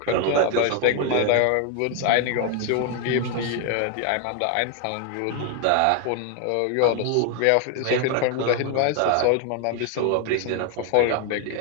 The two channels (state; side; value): different; both; correlation 0.01